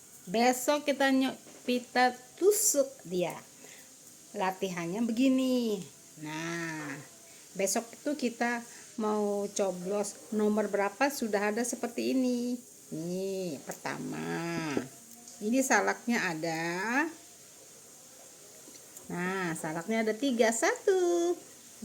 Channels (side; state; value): both; identical; correlation 1.00